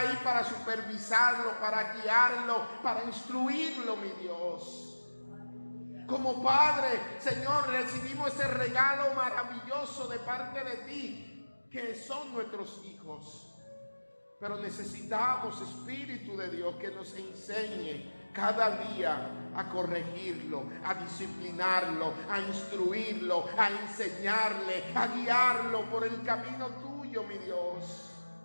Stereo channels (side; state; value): both; inverted; correlation -1.00